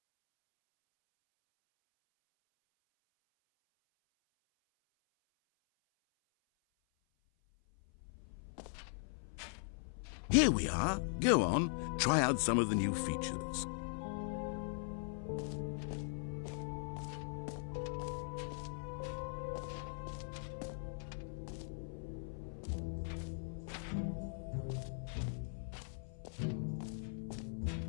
Here we are. Go on, try out some of the new features.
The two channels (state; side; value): silent; right; 51 dB below the other